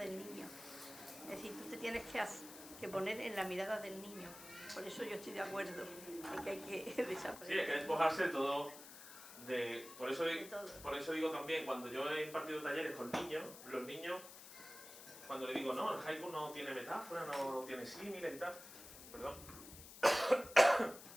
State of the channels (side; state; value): left; noise; hiss, 15 dB below the sound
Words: niño. Es decir, tú te tienes que poner en la mirada del niño. Por eso yo estoy de acuerdo en que hay que desaprender. Sí, hay que despojarse de todo. Por eso todo. digo también, cuando yo he impartido talleres con niños, los niños, cuando le digo, no, el haiku no tiene metáfora, no tiene símiles y tal, perdón,